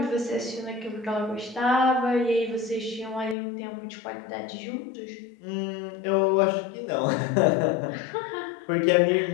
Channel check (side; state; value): right; drops out; at 3.4 s